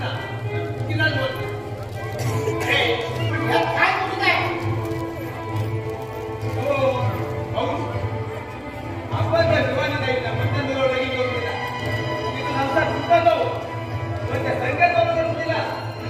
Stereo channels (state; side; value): identical; both; correlation 1.00